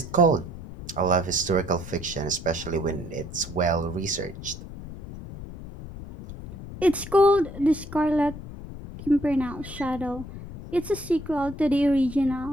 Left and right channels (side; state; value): left; noise; rumble, 12 dB below the sound